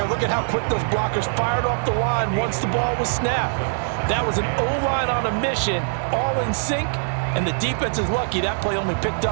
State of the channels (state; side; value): silent; left; 64 dB below the other